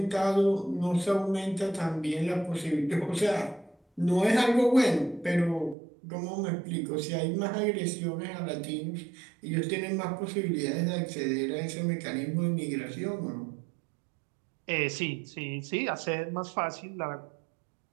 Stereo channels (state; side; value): drops out; left; at 5.8 s